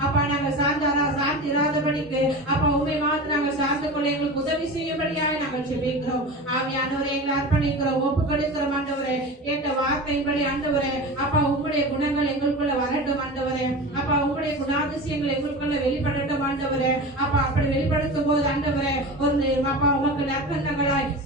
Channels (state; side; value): normal; both; correlation 0.30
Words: அப்பா நாங்கள் சார்ந்திராதபடிக்கு அப்பா உண்மை மாத்திரம் நாங்கள் சார்ந்து கொள்ள எங்களுக்கு உதவி செய்யும்படியாக நாங்கள் ஜெபிக்கிறோம். ஆவியானவரை எங்களை அர்ப்பணிக்கிறோம், ஒப்பு கொடுக்கிறோம் ஆண்டவரே. கேட்ட வார்த்தையின்படி ஆண்டவரே அப்பா உம்முடைய குணங்கள் எங்களுக்குள்ள வரட்டும் ஆண்டவரே. அப்பா உம்முடைய குணாதிசயங்கள் எங்களுக்குள்ள வெளிப்படட்டும் ஆண்டவரே. அப்பா அப்படி வெளிப்படுத்தும் போது ஆண்டவரே ஒரு அப்பா உமக்கு நற்கண்ணங்களாய்